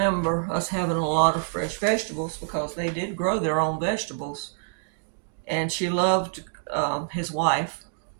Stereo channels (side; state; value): left; silent; digital silence